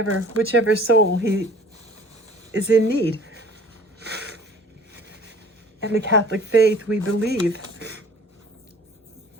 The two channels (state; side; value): normal; both; correlation 0.48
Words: soul he is in need. In the Catholic faith, we believe